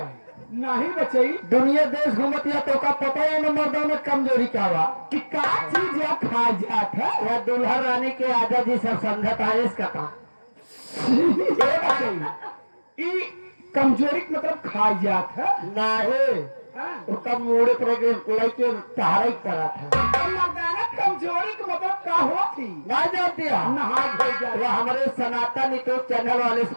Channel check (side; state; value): both; inverted; correlation -1.00